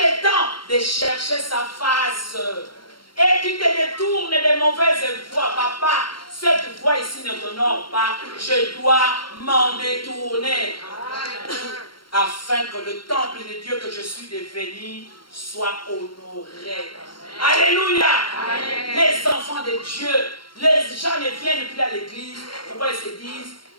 temps de chercher sa face. Et tu te détournes des mauvaises voies. Papa, cette voie ici ne t'honore pas. Je dois m'en détourner. Afin que le temple de Dieu que je suis devenu soit honoré. Alléluia. Amen. Les enfants de Dieu, les gens ne viennent plus à l'église. Pourquoi ils se disent,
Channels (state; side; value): late; right; 0.73 ms